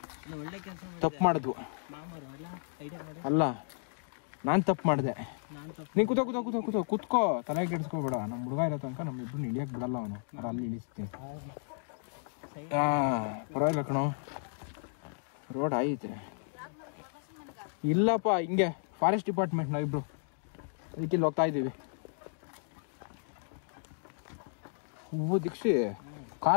ತಪ್ಪು ಮಾಡಿದ್ವು. ಅಲ್ಲ ನಾನು ತಪ್ಪು ಮಾಡಿದೆ. ನೀನು ಕೂತ್ಕೋ ತಲೆ ಕೆಡಿಸ್ಕೋಬೇಡ. ನಮ್ಮ ಹುಡುಗ ಇರೋ ತನಕ ನಮ್ಮಿಬ್ರು ಇಳಿಯಕ್ಕೆ ಬಿಡಲ್ಲ ಅವನು. ಅಲ್ಲಿ ಇಳಿಸ್ತೀನಿ. ಪರವಾಗಿಲ್ಲ ಕಣೋ, ರೋಡ್ ಐತೆ. ಇಲ್ಲಪ್ಪ ಹಿಂಗೆ ಫಾರೆಸ್ಟ್ ಡಿಪಾರ್ಟ್ಮೆಂಟ್ ನಾವಿಬ್ರು ಅದಕ್ಕೆ ಇಲ್ಲಿ ಹೋಗ್ತಾ ಇದ್ದೀವಿ. ಹೂವು ದೀಕ್ಷಿ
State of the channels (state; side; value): silent; right; digital silence